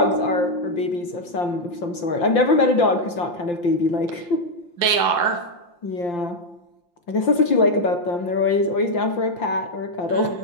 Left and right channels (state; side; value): late; right; 5.8 ms